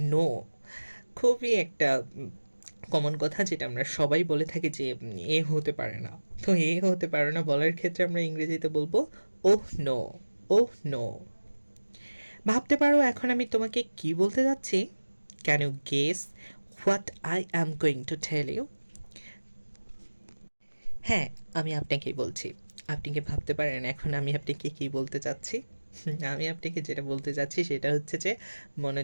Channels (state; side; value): inverted; both; correlation -1.00